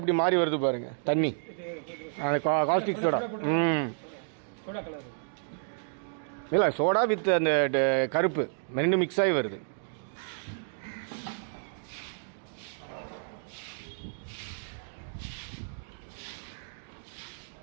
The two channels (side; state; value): left; silent; digital silence